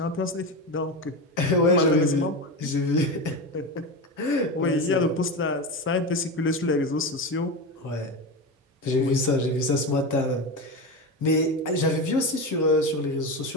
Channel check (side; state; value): both; normal; correlation 0.20